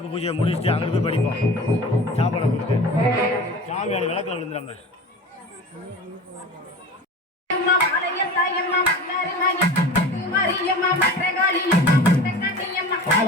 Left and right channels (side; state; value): both; normal; correlation 0.36